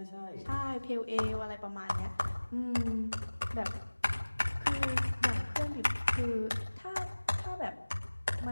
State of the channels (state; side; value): inverted; both; correlation -1.00